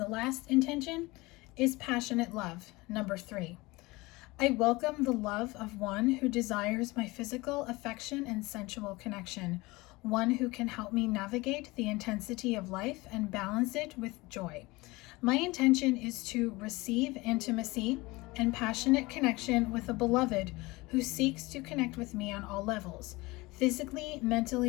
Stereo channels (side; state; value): right; quieter; 22.4 dB